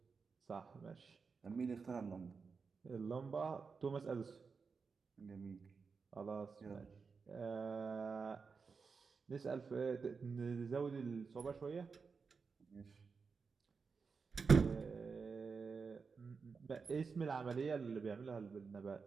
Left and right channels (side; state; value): left; quieter; 5.1 dB